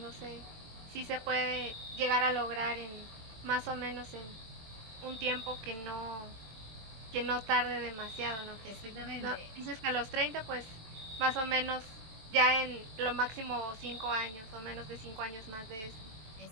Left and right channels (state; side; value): late; left; 23 ms